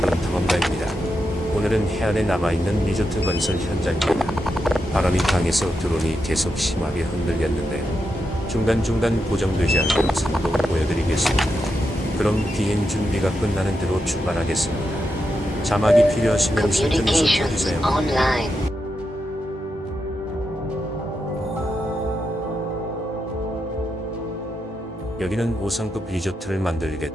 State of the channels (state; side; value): normal; both; correlation 0.86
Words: 탐험가입니다. 오늘은 해안에 남아있는 리조트 건설 현장입니다. 바람이 강해서 드론이 계속 심하게 흔들렸는데요. 중간중간 고정되지 않는 영상도 보여드리겠습니다. 그럼 비행 준비가 끝나는 대로 출발하겠습니다. 자막이 필요하시면 설정해서 Communications 쳐주세요. online. 여기는 5성급 리조트를